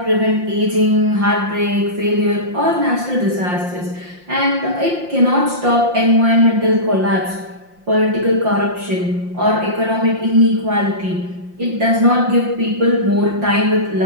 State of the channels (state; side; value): late; left; 5.7 ms